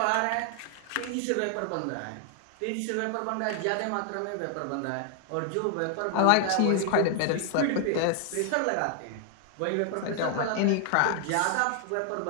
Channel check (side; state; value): both; different; correlation 0.00